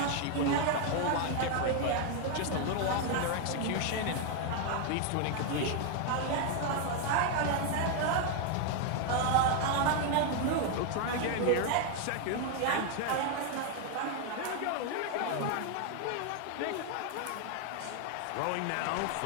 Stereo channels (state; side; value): different; both; correlation 0.01